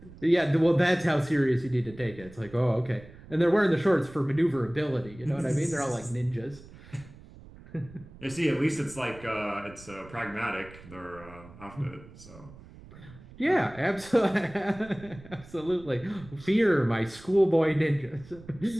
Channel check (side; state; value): right; noise; rumble, 20 dB below the sound